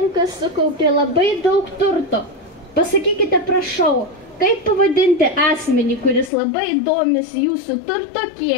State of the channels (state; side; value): drops out; right; at 6.3 s